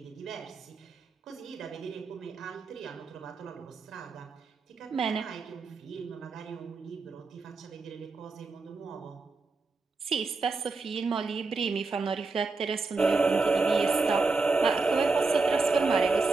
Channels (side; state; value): left; quieter; 3.9 dB